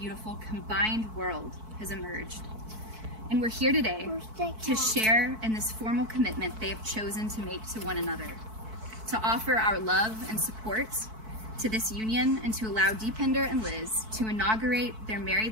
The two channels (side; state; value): left; late; 4.6 ms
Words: combined world has emerged. And we're here today to share in this formal commitment they have chosen to make to one another, to offer our love and support to this union and to allow Deepinder and Liz to inaugurate their